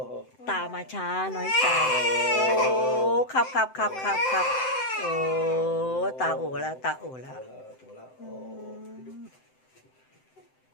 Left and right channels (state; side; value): late; right; 7.8 ms